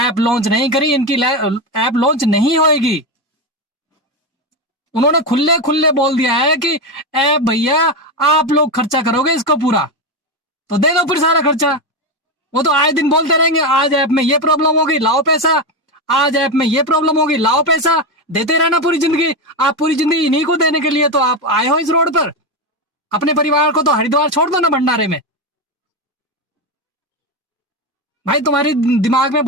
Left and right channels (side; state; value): both; normal; correlation 0.13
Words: लॉन्च नहीं करी। इनकी ऐप लॉन्च नहीं होएगी। उन्होंने खुले खुले बोल दिया है कि ऐप भैया आप लोग खर्चा करोगे इसको पूरा, तो दे दो फिर सारा खर्चा। वो तो आए दिन बोलते रहेंगे आज ऐप में ये प्रॉब्लम होगी लाओ पैसा, आज ऐप में ये प्रॉब्लम होगी लाओ पैसा। देते रहना पूरी जिंदगी। आप पूरी जिंदगी इन्हीं को देने के लिए तो आप आए हो इस रोड पर। अपने परिवार को तो हरिद्वार छोड़ दो ना भंडारे में। भाई तुम्हारी दिमाग में